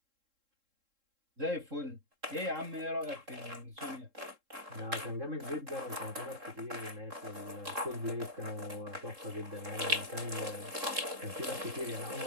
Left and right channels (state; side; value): late; left; 3.7 ms